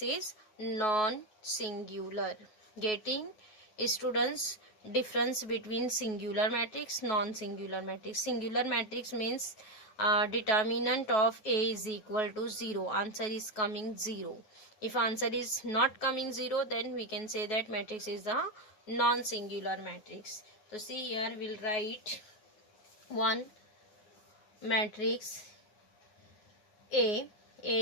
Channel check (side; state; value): right; late; 9.3 ms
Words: is non-singular. Getting students difference between singular matrix, non-singular matrix. Singular matrix means determinant of A is equal to 0, answer is coming 0. If answer is not coming 0, then we can say that matrix is a non-singular matrix. So see here we'll write one matrix A